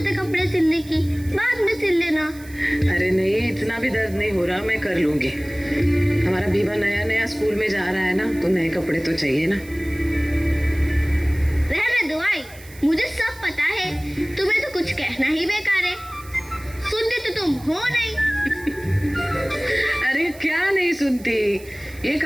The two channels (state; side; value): noise; right; hiss, 21 dB below the sound